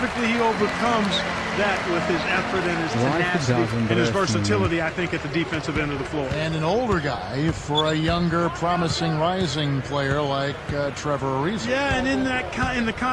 he overcomes that with his effort and his tenacity and his versatility, I think, at the defensive end of the floor. And an older guy for a younger, promising, rising player like Trevor Ariza. Yeah, and in the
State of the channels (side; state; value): both; identical; correlation 1.00